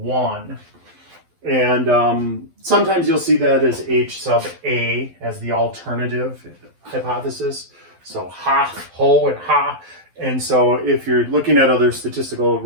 And sometimes you'll see that as H sub A as the alternative hypothesis. So ha, ho, and ha. And so if you're looking at other statistical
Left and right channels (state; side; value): late; left; 12 ms